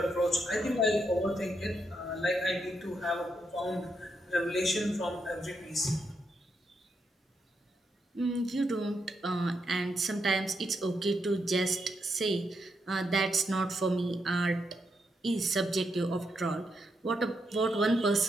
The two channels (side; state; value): both; normal; correlation 0.81